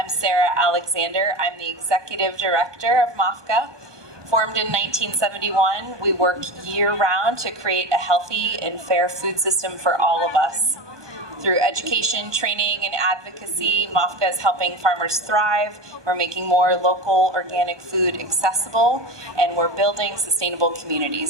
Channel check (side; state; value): left; late; 1.2 ms